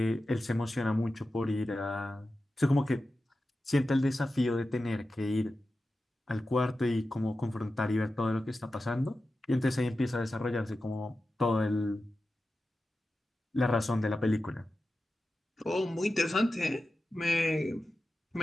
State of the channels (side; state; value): both; normal; correlation 0.93